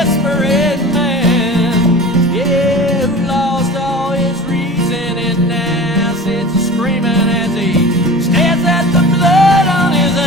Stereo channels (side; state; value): both; normal; correlation 0.37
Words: man, yeah, who lost all his reason and now sits screaming as he stares at the blood on his